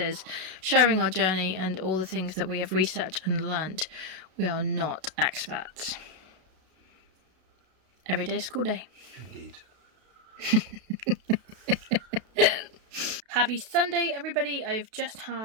sharing our journey and all the things that we have researched and learnt. We are not experts. Every day is school day. Indeed. Happy Sunday, everybody. I've just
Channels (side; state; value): left; late; 32 ms